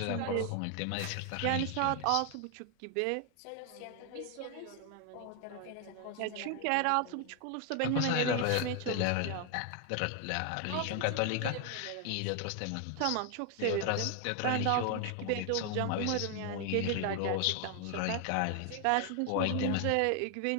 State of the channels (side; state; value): both; different; correlation 0.00